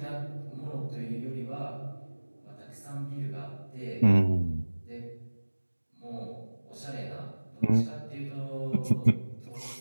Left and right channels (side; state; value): both; inverted; correlation -1.00